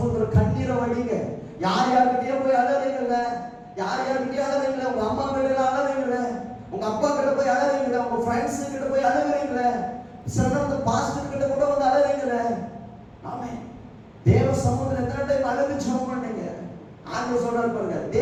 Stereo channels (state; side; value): identical; both; correlation 1.00